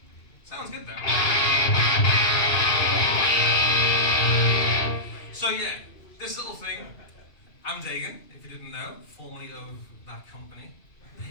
Sounds good though. So yeah, this little thing. I'm Dagan, if you didn't know, formerly of that company.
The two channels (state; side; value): late; right; 2.6 ms